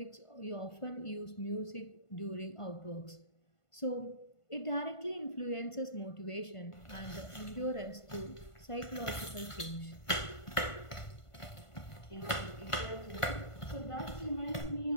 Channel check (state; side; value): late; right; 1.5 ms